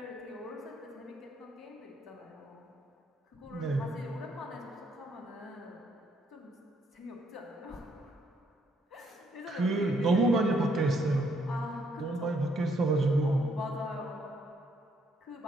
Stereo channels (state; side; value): normal; both; correlation 0.71